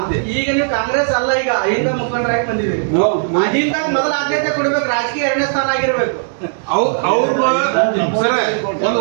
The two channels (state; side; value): silent; left; 66 dB below the other